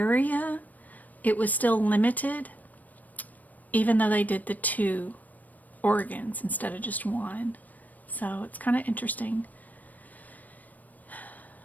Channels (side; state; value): right; late; 0.080 ms